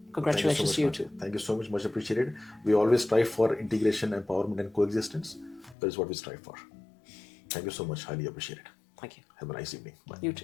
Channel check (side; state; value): right; drops out; at 5.8 s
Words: congratulations to you too. Thank you so much. Much appreciated. We always strive for integration, empowerment, and coexistence. That is what we strive for. Thank you so much. Highly appreciate it. Thank you. Have a nice evening. Bye. You